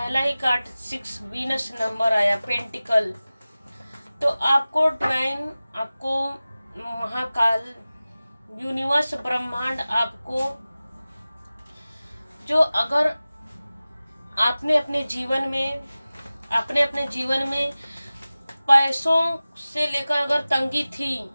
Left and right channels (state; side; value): inverted; both; correlation -0.97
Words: ही कार्ड 6 वीनस नंबर आया, पेंटिकल। तो आपको डिवाइन, आपको महाकाल, यूनिवर्स, ब्रह्मांड आपको जो अगर आपने अपने जीवन में पैसों से लेकर अगर तंगी थी